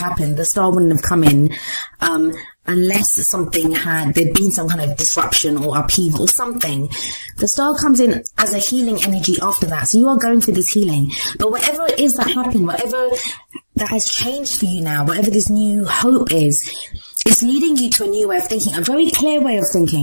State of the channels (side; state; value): both; inverted; correlation -1.00